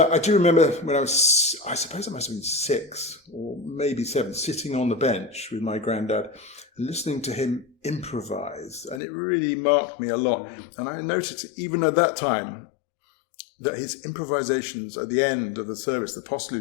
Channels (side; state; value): right; drops out; at 9.0 s